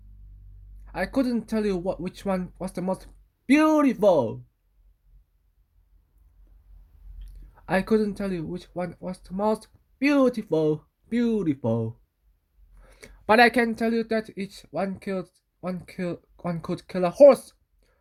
I couldn't tell you which one was the most beautiful. I couldn't tell you which one was the most beautiful. But I can tell you that each one could kill a horse.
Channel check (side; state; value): both; identical; correlation 1.00